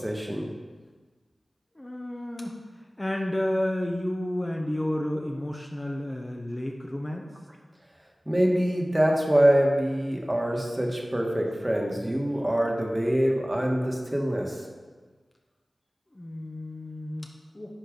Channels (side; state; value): both; normal; correlation 0.98